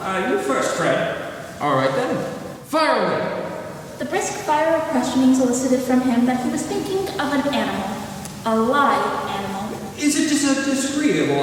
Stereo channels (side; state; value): both; identical; correlation 1.00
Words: You first, Fred. All right then. Fire away. The brisk fire of questioning elicited from him that he was thinking of an animal. A live animal. Is it just a disagreeable